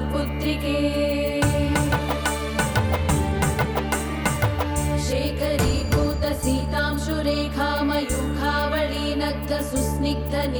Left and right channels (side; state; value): both; identical; correlation 1.00